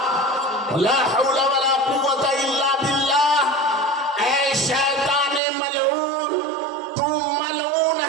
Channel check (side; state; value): left; drops out; at 5.4 s